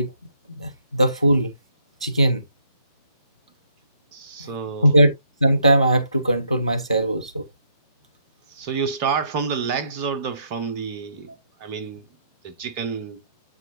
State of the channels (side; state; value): both; inverted; correlation -0.73